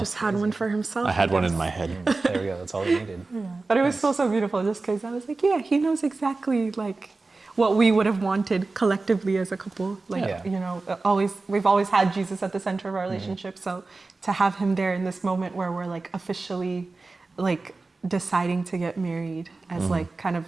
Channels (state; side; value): quieter; left; 3.6 dB